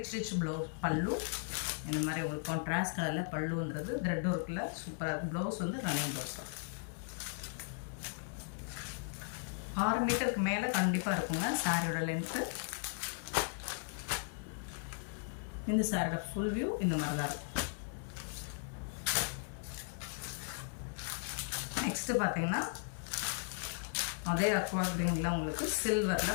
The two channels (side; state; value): right; silent; digital silence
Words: ப்ளவுஸ் பல்லு. இந்த மாதிரி உங்களுக்கு கான்ட்ராஸ்ட் கலரில் பல்லு வந்துடுது. த்ரெட் ஒர்க்கில் சூப்பராக இருக்குது. ப்ளவுஸ் வந்து ரன்னிங் ப்ளவுஸ் தான். 6 மீட்டருக்கு மேலே கண்டிப்பாக இருக்குங்க சாரியோட லென்த்து. இந்த சாரியோட ஃபுல் வியூ இந்த மாதிரி தான் இருக்கும். நெக்ஸ்ட்டு பார்த்தீங்கன்னா அதே அக்வா கிரீனில் உங்களுக்கு